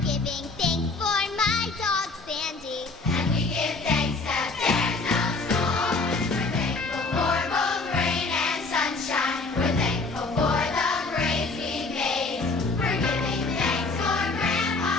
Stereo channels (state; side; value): quieter; right; 3.7 dB